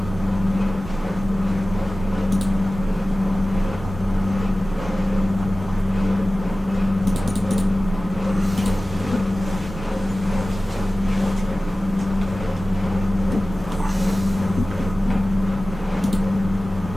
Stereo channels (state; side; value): normal; both; correlation 0.96